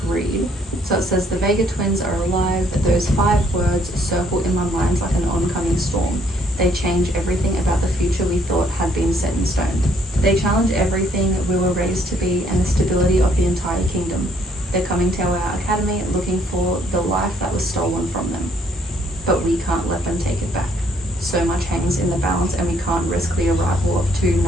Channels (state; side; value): normal; both; correlation 0.66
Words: read. So it says, the Vega twins are alive. Those 5 words circle in my mind like an oncoming storm. They change everything about the future we thought had been set in stone. They challenge everything we were raised to be and the stability of the entire kingdom. They're coming to our academy looking for the life that was stolen from them. But we can't let them take it back. So much hangs in the balance, and we can't risk the arrival of two